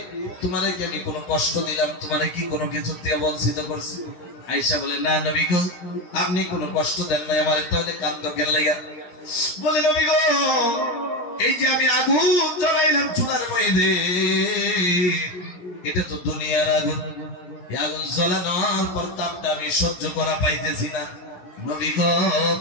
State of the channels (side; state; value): right; late; 16 ms